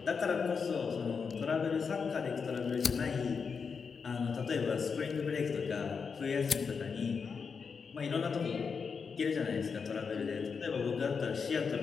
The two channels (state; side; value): quieter; right; 5.7 dB